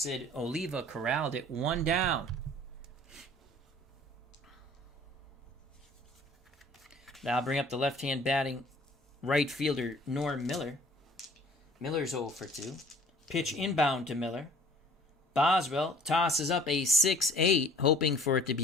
Oliva corralled it, 1 down. That'll bring up the left-hand batting right fielder, Norm Miller. Miller's 0 for 2. Pitch inbound to Miller. Boswell tosses up a 6-8, hoping for it to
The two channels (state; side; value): normal; both; correlation 0.51